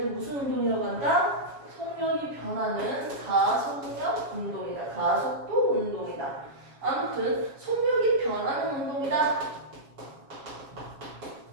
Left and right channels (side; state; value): left; late; 7.4 ms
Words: 무슨 운동이라고 한다? 속력이 변하는 가속력 운동이다. 가속도 운동이다. 아무튼 속력이 변하는 운동이다.